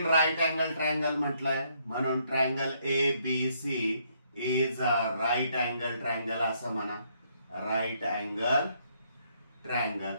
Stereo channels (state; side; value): inverted; both; correlation -0.71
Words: right angle triangle म्हटलंय म्हणून triangle ABC is a right angle triangle असं म्हणा. Right angle triangle.